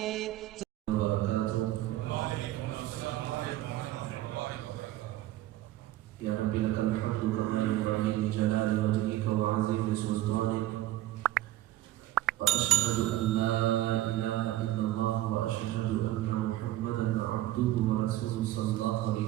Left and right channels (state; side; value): quieter; left; 15.0 dB